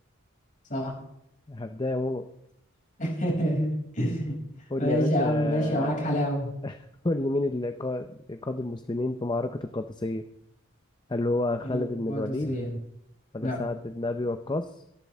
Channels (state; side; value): normal; both; correlation 0.68